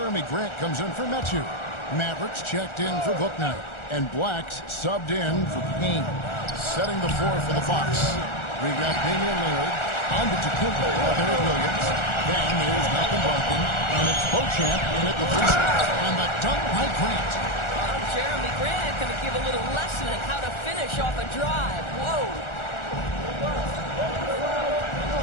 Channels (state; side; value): late; right; 1.4 ms